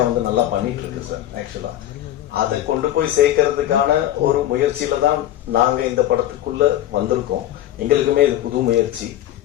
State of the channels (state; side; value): quieter; right; 12.8 dB